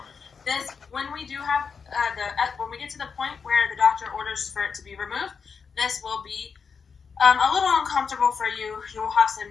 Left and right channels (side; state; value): right; quieter; 5.8 dB